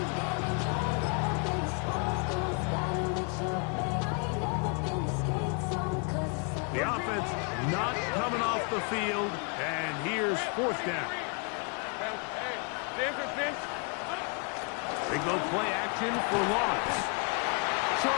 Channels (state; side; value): quieter; right; 37.6 dB